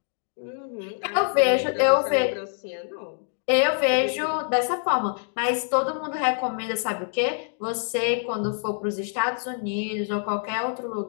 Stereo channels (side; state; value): right; silent; 61 dB below the other